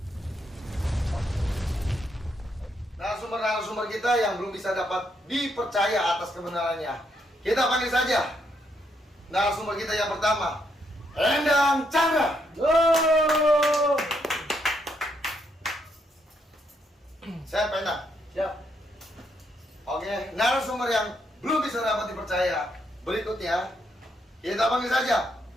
Narasumber kita yang belum bisa dapat dipercaya atas kebenarannya, kita panggil saja narasumber kita yang pertama, Endang Chandra. Saya Endang. Siap. Oke, narasumber yang belum bisa dapat dipercaya berikutnya, kita panggil saja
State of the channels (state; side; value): normal; both; correlation 0.76